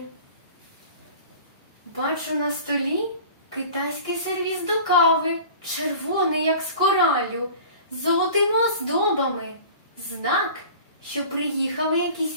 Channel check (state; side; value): inverted; both; correlation -0.41